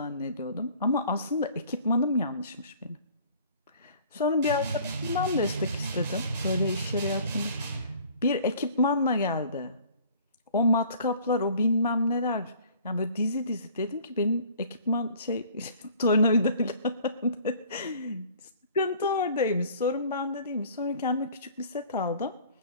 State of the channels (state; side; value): inverted; both; correlation -0.51